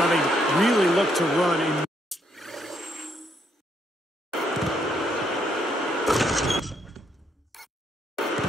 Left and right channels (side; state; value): both; normal; correlation 0.73